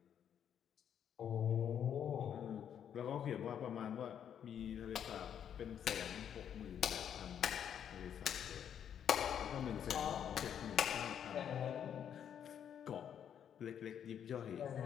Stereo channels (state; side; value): quieter; right; 8.9 dB